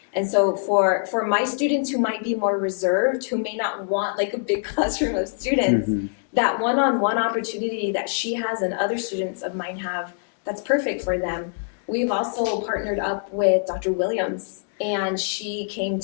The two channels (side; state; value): right; silent; digital silence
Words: And so for my students who might be more reserved, who may not want like a big classroom of students, that one-on-one opportunity that she has and other students of mine have, that's perfect for them. We've also partnered up with Dr. Williams, and she came